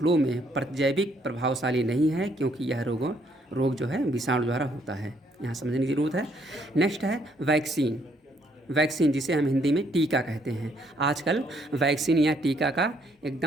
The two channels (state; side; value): normal; both; correlation 0.69